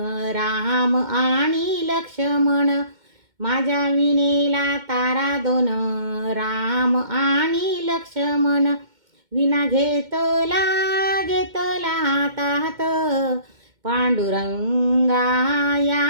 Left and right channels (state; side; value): late; left; 2.1 ms